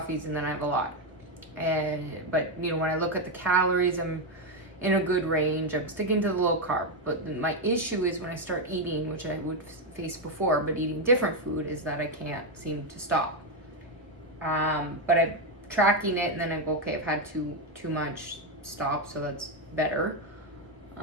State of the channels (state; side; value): normal; both; correlation 0.05